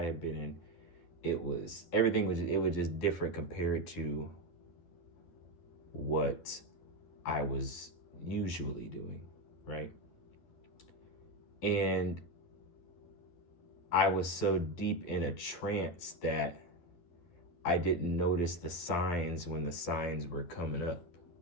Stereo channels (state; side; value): late; right; 12 ms